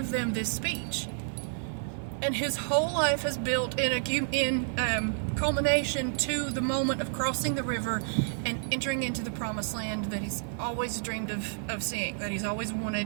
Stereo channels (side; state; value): left; silent; digital silence